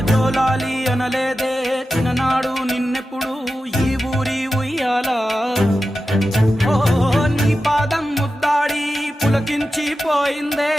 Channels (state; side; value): normal; both; correlation 0.92